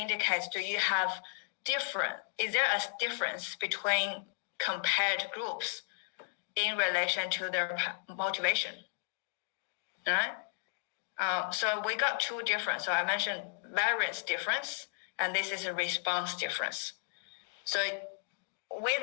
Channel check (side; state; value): right; silent; digital silence